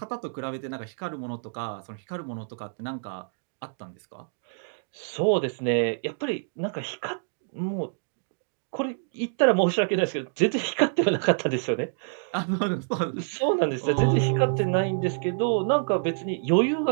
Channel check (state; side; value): silent; left; digital silence